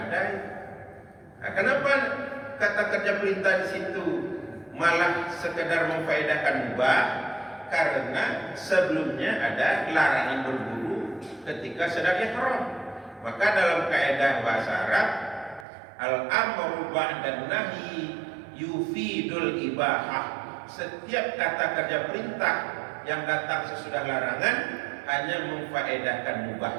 Nah, kenapa kata kerja perintah di situ malah sekedar memfaedahkan mubah? Karena sebelumnya ada larangan berburu ketika sedang ihram. Maka dalam kaidah bahasa Arab, al-amru ba'da nahyi yufidul ibahah. Setiap kata kerja perintah yang datang sesudah larangan hanya memfaedahkan mubah.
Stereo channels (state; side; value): drops out; left; at 15.7 s